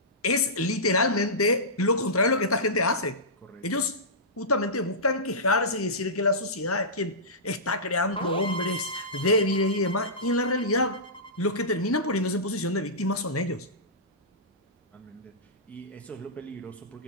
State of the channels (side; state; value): both; normal; correlation -0.17